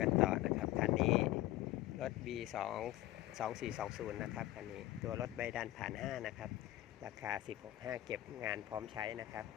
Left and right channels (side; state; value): right; quieter; 15.2 dB